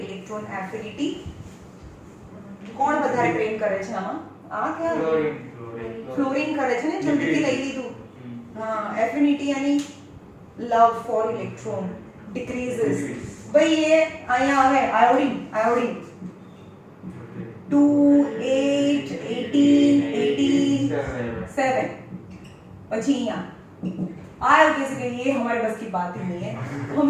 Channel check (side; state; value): both; identical; correlation 1.00